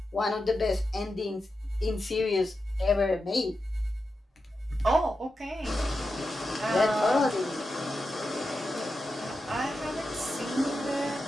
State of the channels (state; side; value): normal; both; correlation 0.89